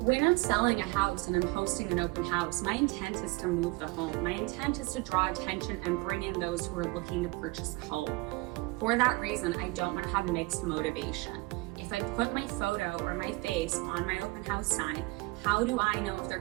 I'm selling a house and I'm hosting an open house, my intent is to move the home. My intent is to draw attention and bring in those who are looking to purchase a home. For that reason, I don't want to have mixed motivation. If I put my photo or my face on my open house sign, how do I know if they're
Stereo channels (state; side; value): quieter; left; 23.7 dB